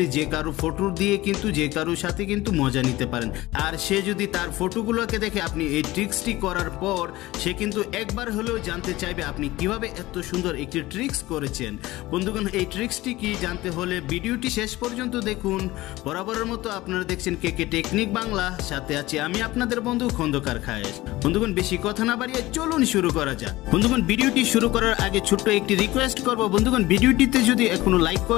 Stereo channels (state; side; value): quieter; right; 18.3 dB